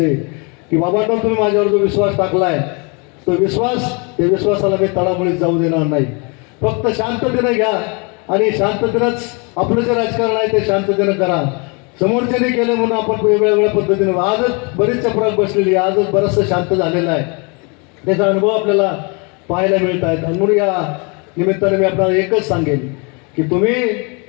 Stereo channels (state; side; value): quieter; right; 32.2 dB